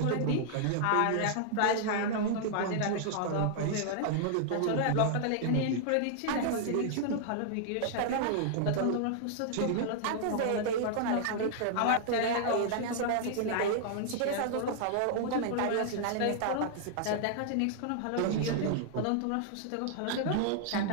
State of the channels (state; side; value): different; both; correlation -0.01